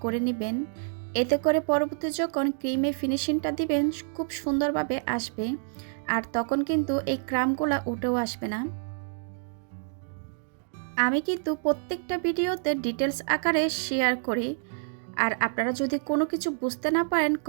করে নেবেন, এতে করে পরবর্তী যখন ক্রিমে ফিনিশিংটা দিবেন খুব সুন্দরভাবে আসবে, আর তখন কিন্তু এই ক্রামগুলা উঠেও আসবে না। আমি কিন্তু প্রত্যেকটা ভিডিওতে ডিটেলস আকারে শেয়ার করি, আর আপনারা যদি কোনো কিছু বুঝতে না পারেন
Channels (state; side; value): silent; left; digital silence